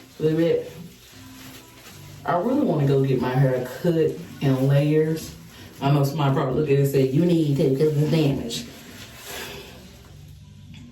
Baby, I really want to go get my hair cut in layers. I know somebody probably look at it and say, you need to because it's damaged.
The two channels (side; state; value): both; identical; correlation 1.00